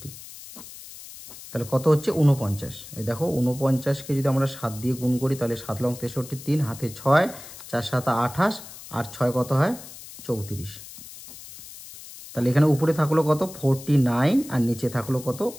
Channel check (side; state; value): left; noise; hiss, 15 dB below the sound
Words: তাহলে কত হচ্ছে 49। এই দেখো 49কে যদি আমরা 7 দিয়ে গুণ করি তাহলে 7 লং 63, 3 হাতে 6, 4 7 28, আর 6 কত হয় 34, তাহলে এখানে উপরে থাকলো কত 49 আর নিচে থাকলো কত